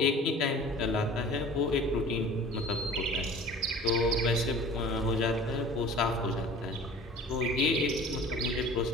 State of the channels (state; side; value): normal; both; correlation 0.43